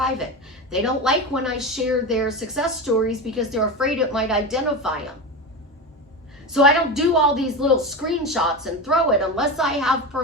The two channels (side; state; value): both; normal; correlation 0.22